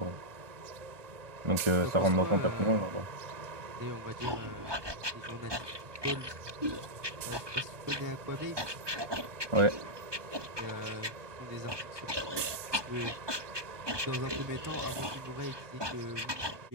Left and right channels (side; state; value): left; late; 1.2 ms